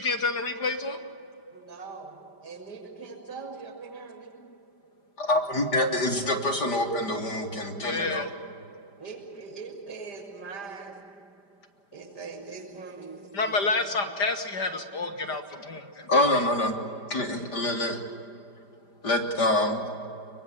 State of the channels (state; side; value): late; right; 5.0 ms